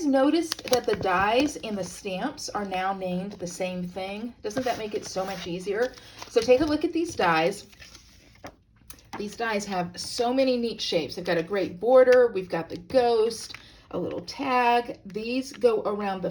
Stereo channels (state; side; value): identical; both; correlation 1.00